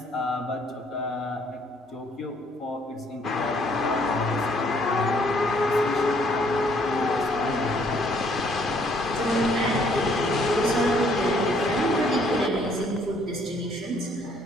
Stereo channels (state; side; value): normal; both; correlation 0.64